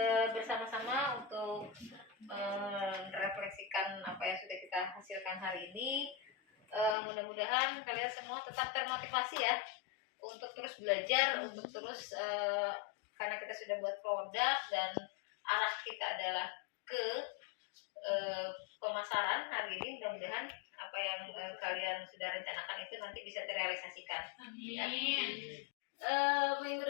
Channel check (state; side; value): drops out; right; at 7.0 s